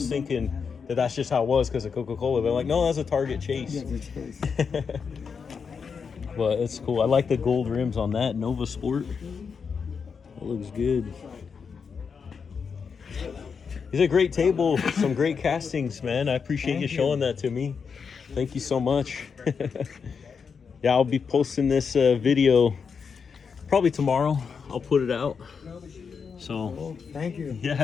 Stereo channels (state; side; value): quieter; right; 5.9 dB